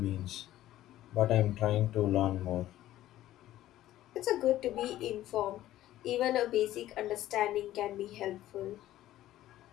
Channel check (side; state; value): right; quieter; 14.0 dB